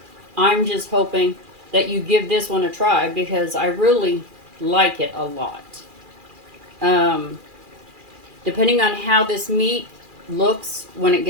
I'm just hoping that you give this one a try because I really like it a lot. Depending on how this meat looks when it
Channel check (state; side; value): late; left; 2.4 ms